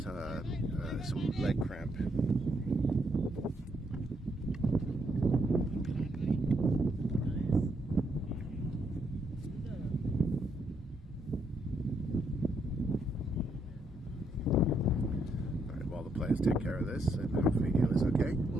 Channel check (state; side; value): normal; both; correlation 0.75